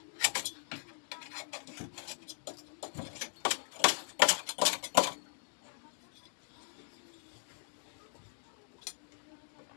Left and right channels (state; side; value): silent; right; digital silence